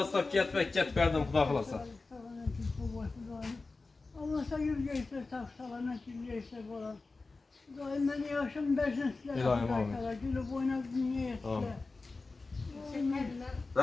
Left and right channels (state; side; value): quieter; right; 3.7 dB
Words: ketib berdim Xudo xolasa. Allah sana yüzgeyse tak salamet yüzgeyse falan. Daim beni yaşım versin sizlere. İlahim amin. Gülüp oynak dünya Amin. etsinler.